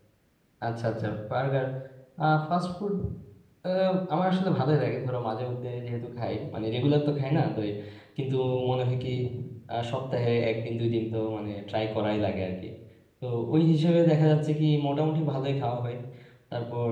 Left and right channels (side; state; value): both; identical; correlation 1.00